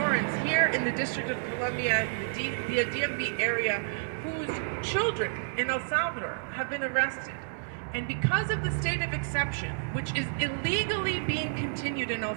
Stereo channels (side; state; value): left; silent; 57 dB below the other